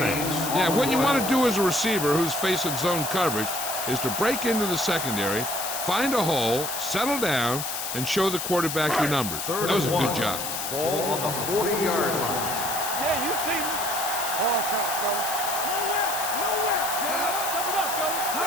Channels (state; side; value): noise; left; hiss, 4 dB below the sound